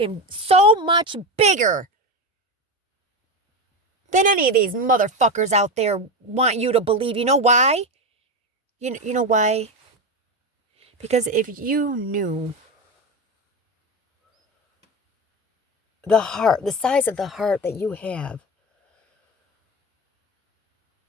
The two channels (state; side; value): normal; both; correlation 0.17